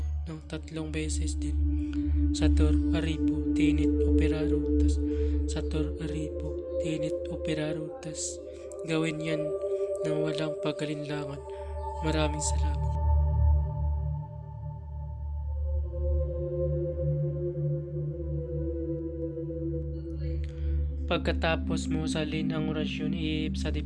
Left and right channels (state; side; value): identical; both; correlation 1.00